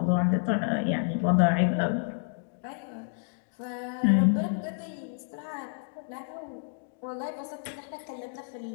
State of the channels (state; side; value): silent; right; digital silence